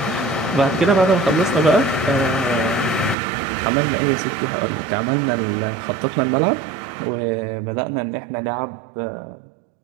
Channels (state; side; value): drops out; left; at 3.2 s